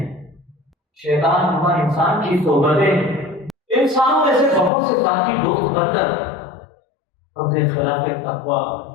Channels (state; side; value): drops out; right; at 4.7 s